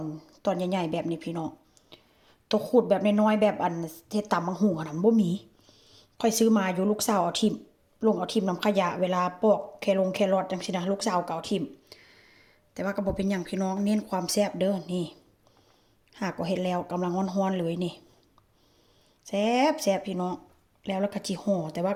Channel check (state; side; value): identical; both; correlation 1.00